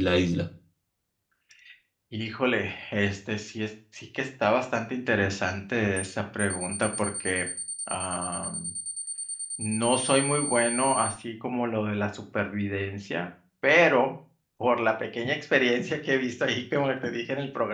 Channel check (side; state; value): both; identical; correlation 1.00